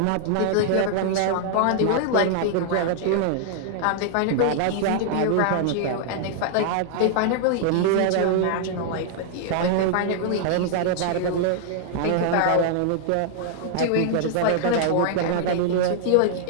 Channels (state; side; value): different; both; correlation -0.01